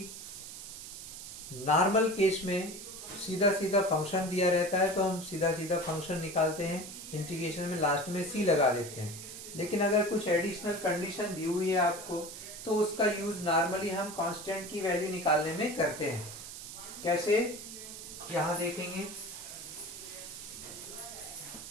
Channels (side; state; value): right; noise; hiss, 11 dB below the sound